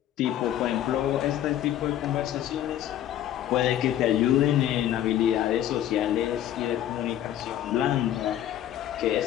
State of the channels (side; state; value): right; quieter; 11.7 dB